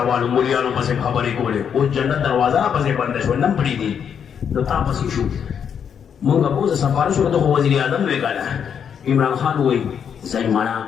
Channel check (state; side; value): quieter; right; 7.7 dB